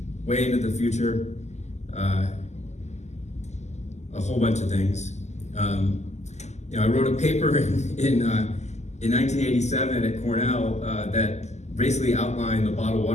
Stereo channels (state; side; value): late; right; 0.33 ms